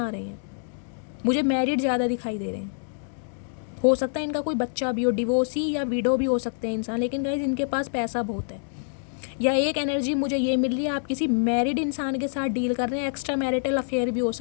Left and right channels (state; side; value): silent; right; digital silence